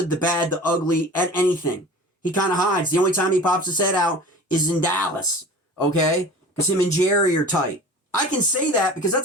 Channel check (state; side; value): normal; both; correlation 0.39